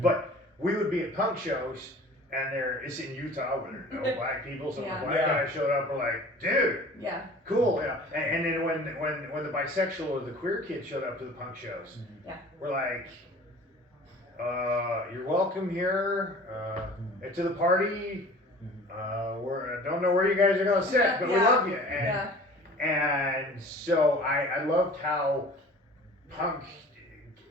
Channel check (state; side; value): normal; both; correlation 0.44